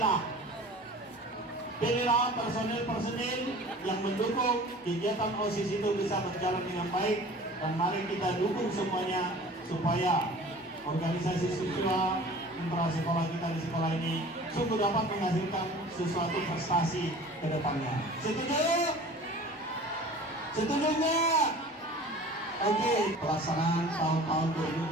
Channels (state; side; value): normal; both; correlation 0.44